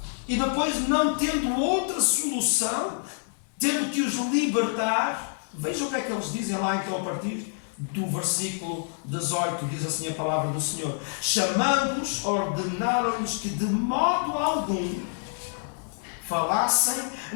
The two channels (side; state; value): right; silent; digital silence